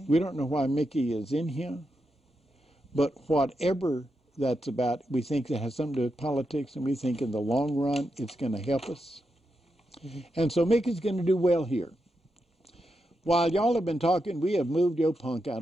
We don't know why Mickey is in here, but whatever that's about, we think it has something to do with politics, and we think in the long run it's going to help us. And so Mickey's going to do well here. While y'all have been talking, we have moved your punk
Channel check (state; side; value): normal; both; correlation 0.86